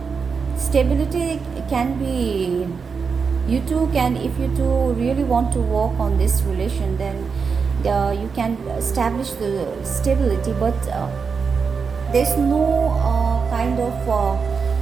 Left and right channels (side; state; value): left; quieter; 5.5 dB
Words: stability. Can be you two can, if you two really want to work on this relation, then you can establish the stability, but there's no kind of